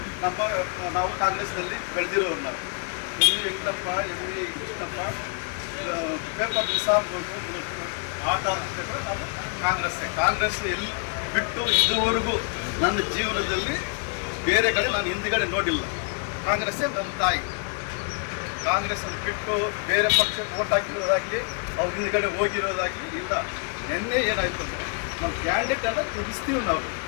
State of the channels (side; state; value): right; quieter; 39.6 dB